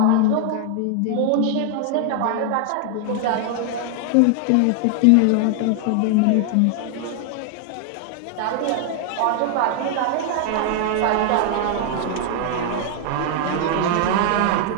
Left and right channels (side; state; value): both; different; correlation 0.00